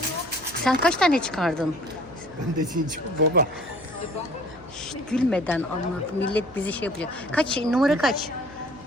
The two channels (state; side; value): noise; left; hum, 24 dB below the sound